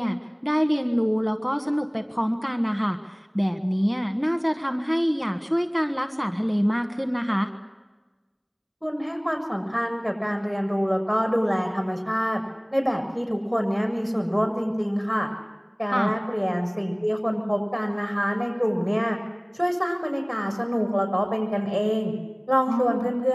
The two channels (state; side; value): identical; both; correlation 1.00